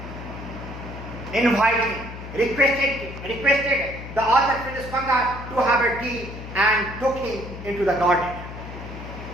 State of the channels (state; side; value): noise; left; hum, 11 dB below the sound